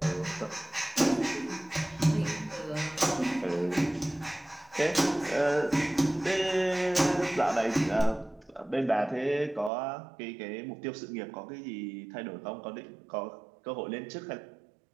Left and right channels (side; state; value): left; drops out; at 9.7 s